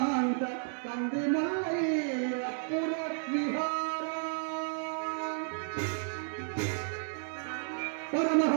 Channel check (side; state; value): left; silent; digital silence